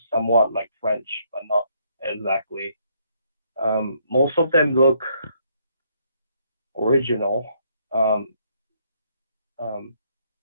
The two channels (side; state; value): both; inverted; correlation -0.70